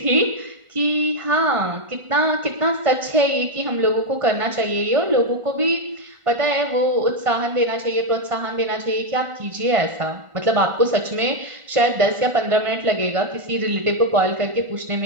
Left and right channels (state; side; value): late; left; 1.5 ms